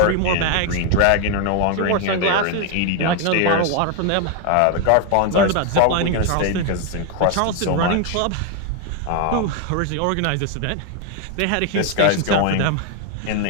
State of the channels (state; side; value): different; both; correlation 0.01